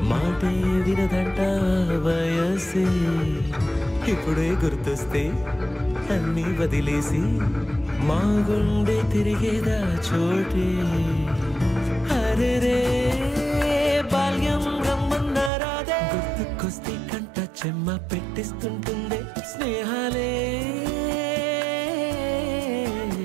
మాటే వినదంట వయసే ఇప్పుడే గుర్తొస్తే అన్నీ వదిలేసి మా గుండె తిరిగేదా చోటే అరే రే బాల్యం రమ్మన్నారాదే గుర్తుకొస్తే కంట చెమ్మ పెట్టిస్తుంటుందే స్నేహాలే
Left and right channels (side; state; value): left; drops out; at 15.5 s